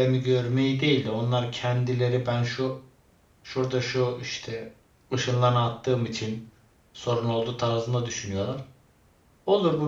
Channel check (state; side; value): identical; both; correlation 1.00